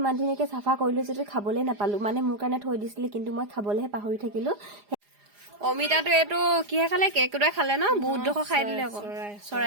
ইমান ধুনীয়াকৈ চাফা কৰিলোঁ যদিও খাবলৈ নাপালোঁ, মানে মোৰ কাৰণে থৈ দিছিলে, কিন্তু মই খাবলৈহে পাহৰি থাকিলোঁ। অমিতাটো এইটো কিহে খালে? কেকুৰাই খালে ন? বহুত ডোখৰ খাই দিলে আকৌ।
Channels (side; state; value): left; late; 4.9 ms